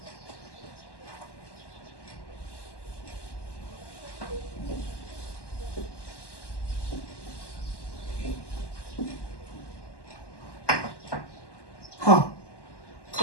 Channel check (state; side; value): late; right; 1.1 ms